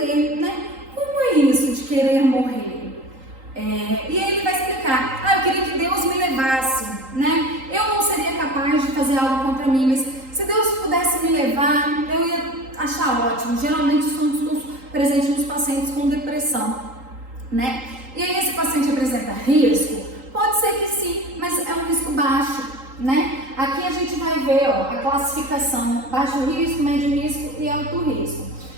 né? Como é isso de querer morrer? E aí ele vai explicar, eu queria que Deus me levasse, né? Eu não seria capaz de fazer algo contra mim, mas se Deus pudesse me levar, eu ia achar ótimo. Geralmente isso é um discurso presente nos pacientes com depressão, né? E aí esse paciente apresenta risco? Pode ser que sim, mas é um risco baixo, né? Aqui a gente vai ver a classificação: baixo risco, médio risco e alto risco.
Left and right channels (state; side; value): late; left; 3.8 ms